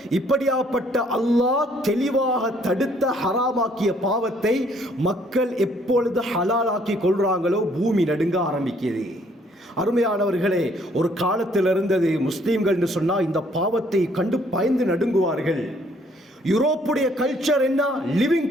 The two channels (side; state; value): both; normal; correlation 0.64